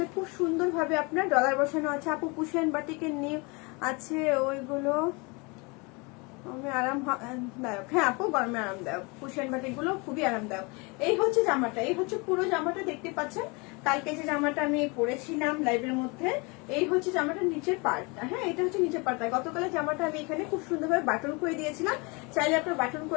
খুব সুন্দর ভাবে আপনার ডলার বসানো আছে। আপু পুশিয়ান বাটিকের নিউ আছে ওইগুলো আরামদায়ক। হ্যাঁ আপু, গরমে আরামদায়ক। কুশন বাটিক গুলো খুবই আরামদায়ক। এই হচ্ছে জামাটা, এই হচ্ছে পুরো জামাটা দেখতে পাচ্ছেন। কালকে যে জামাটা আমি পরেছিলাম লাইভের মধ্যে, এই হচ্ছে জামাটার নিচের পার্টটা। হ্যাঁ, এটা হচ্ছে নিচের পার্টটা। গতকালের জামাটা আমি এখানে খুব সুন্দরভাবে বাটন করে দিয়েছিলাম। চাইলে আপনারা বাটন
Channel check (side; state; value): right; quieter; 28.7 dB